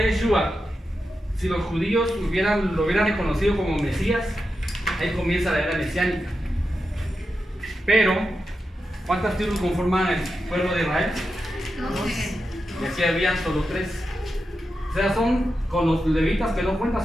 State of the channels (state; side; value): normal; both; correlation 0.89